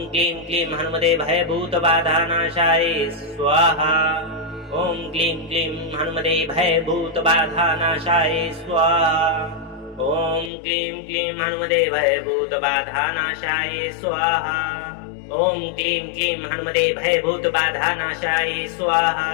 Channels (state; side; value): drops out; right; at 10.5 s